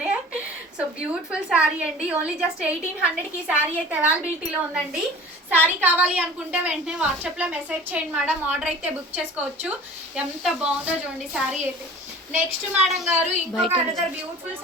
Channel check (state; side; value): normal; both; correlation 0.43